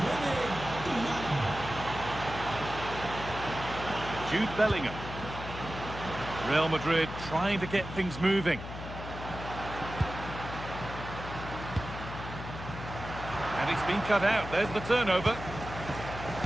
Jude Bellingham. Real Madrid trying to get things moving. And it's been cut out. There's the turnover.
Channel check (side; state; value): left; noise; hum, 9 dB below the sound